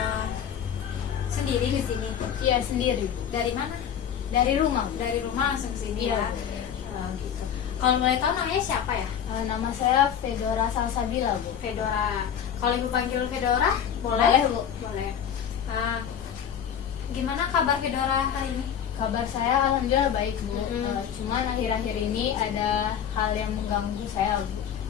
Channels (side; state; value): right; quieter; 8.7 dB